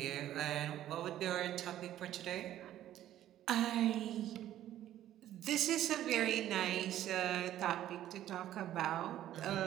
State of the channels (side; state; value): left; quieter; 12.5 dB